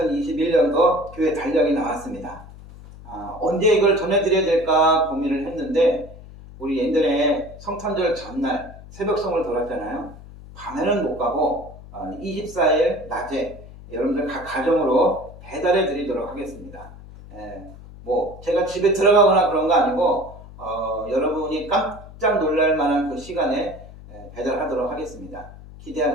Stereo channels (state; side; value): noise; left; hum, 17 dB below the sound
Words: 교회 달력이 나왔습니다. 언제 이걸 전해드려야 될까 고민을 했는데 우리 예전에 성탄절 전날 새벽송을 돌았잖아요. 밤에는 못 가고 24일 낮에 여러분들 각 가정으로 배달해 드리도록 하겠습니다. 뭐 제가 집에 들어가거나 그런 거 아니고 여러분이 깜짝 놀랄 만한 그 시간에 배달하도록 하겠습니다.